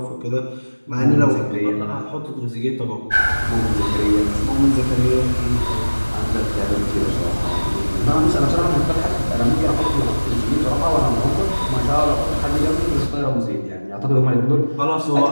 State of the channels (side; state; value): both; inverted; correlation -1.00